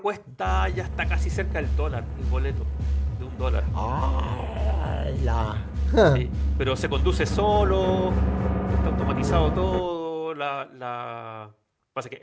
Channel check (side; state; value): both; identical; correlation 1.00